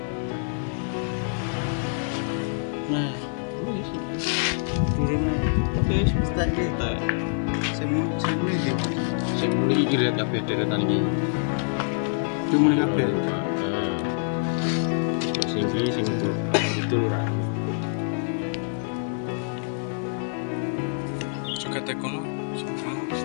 nah, Wis. turunnya. Wis Tak kita. saya mulai dia. Sing muni iki rek kabeh deretan iki. Itu mulai kabeh. Heeh. Sing iki sing itu ora. Juga tekono.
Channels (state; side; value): silent; right; digital silence